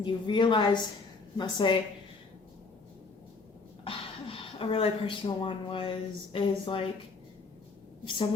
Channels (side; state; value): right; quieter; 4.1 dB